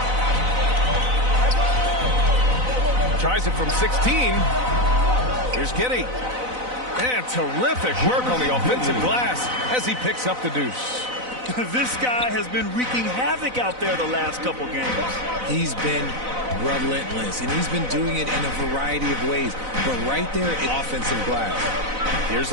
Tries it from 16. Here's Giddy. And terrific work on the offensive glass as he picks up the deuce. This guy has been wreaking havoc out there the last couple games. He's been relentless, and he's been doing it in a variety of ways. But right there, offensive glass. Here's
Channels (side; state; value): left; late; 4.0 ms